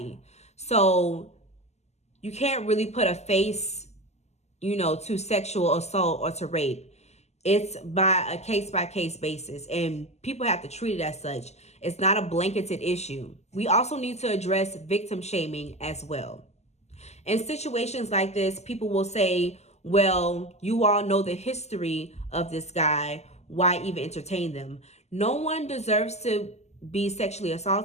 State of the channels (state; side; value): late; right; 0.32 ms